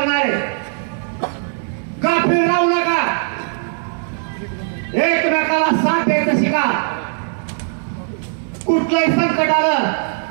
आहे. गाफील राहू नका. एकमेकाला साथ द्यायचं शिका. कुठलंही संकट आलं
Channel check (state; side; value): silent; left; digital silence